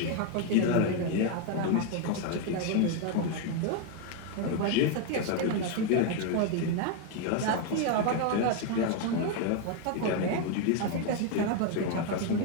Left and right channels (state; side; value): different; both; correlation 0.01